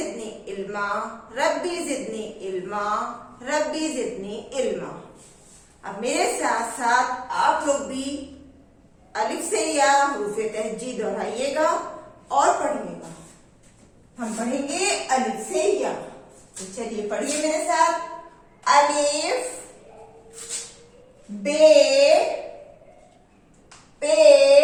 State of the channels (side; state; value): both; identical; correlation 1.00